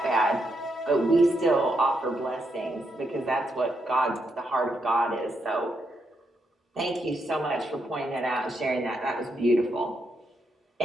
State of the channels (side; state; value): both; normal; correlation 0.80